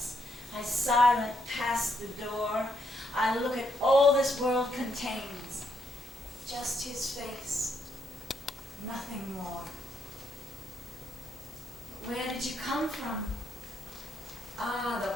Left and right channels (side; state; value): both; normal; correlation 0.76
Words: I silent pass the door. I look at all this world contains. Just his face, nothing more. Where did you come from? Ah,